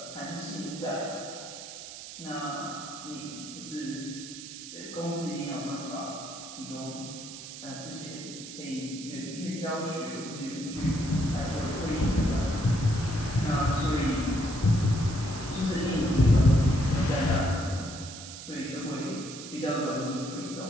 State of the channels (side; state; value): right; noise; hiss, 12 dB below the sound